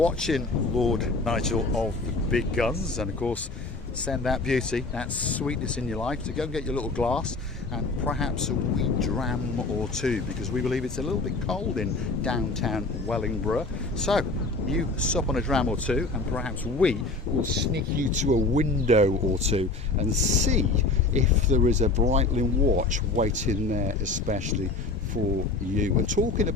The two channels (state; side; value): quieter; right; 3.4 dB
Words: Lord Nigel of the Big Guns, and of course send that beauty, that sweetness in your life, to go and get your little glass and perhaps a wee dram or two, because we believe it's a little bit cold in downtown Wellingborough. So you sup on a dram or two, and perhaps we will sneak you to a window or two and see if there is a Brightling watch waiting there especially for you. And talking